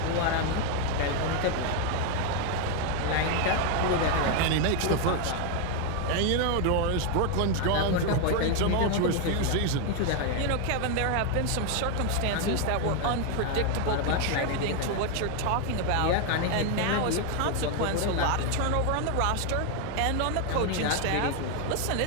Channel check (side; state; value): both; different; correlation 0.01